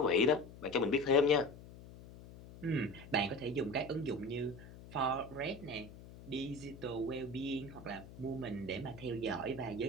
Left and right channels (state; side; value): noise; left; hum, 17 dB below the sound